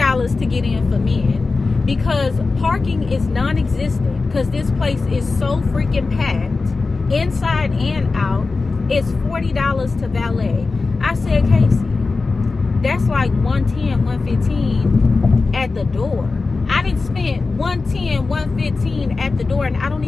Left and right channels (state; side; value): quieter; right; 3.9 dB